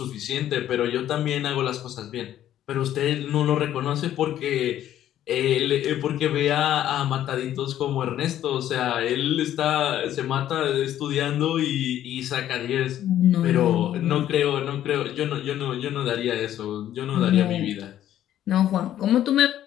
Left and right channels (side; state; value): right; quieter; 11.8 dB